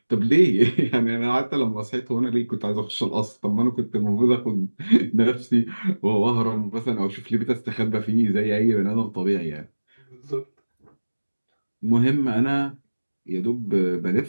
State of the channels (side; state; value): both; inverted; correlation -1.00